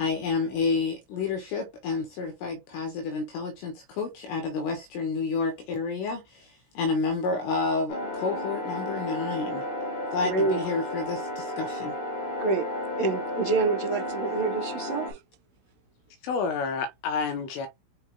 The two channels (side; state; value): right; late; 16 ms